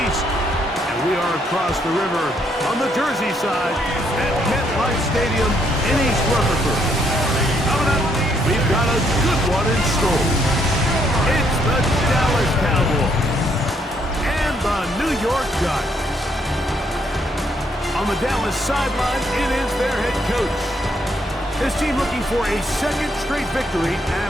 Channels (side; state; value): both; normal; correlation 0.72